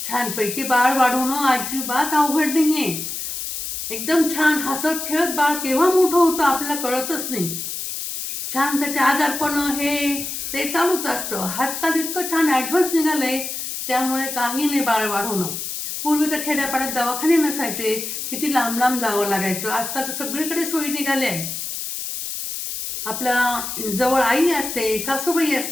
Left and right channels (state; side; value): noise; left; hiss, 5 dB below the sound